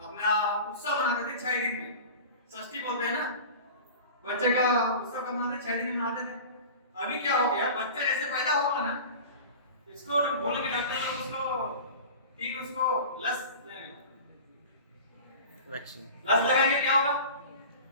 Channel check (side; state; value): both; inverted; correlation -0.36